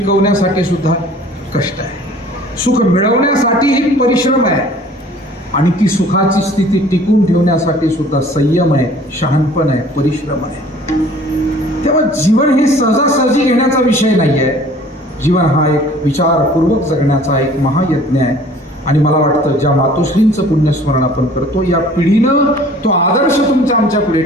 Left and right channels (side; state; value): both; normal; correlation 0.50